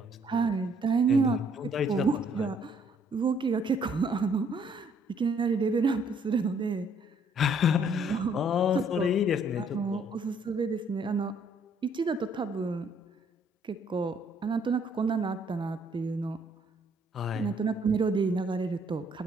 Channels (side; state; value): both; normal; correlation 0.65